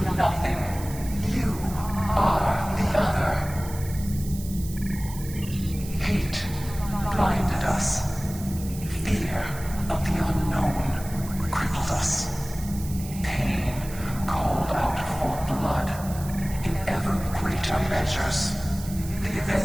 nothing. You are the other. Hate blinded us. Fear of the unknown crippled us. Pain called out for blood in ever greater measures. The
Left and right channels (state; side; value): noise; right; hiss, 15 dB below the sound